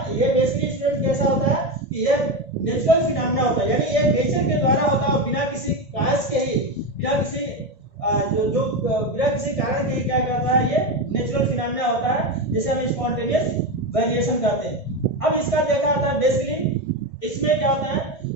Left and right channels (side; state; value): right; late; 1.9 ms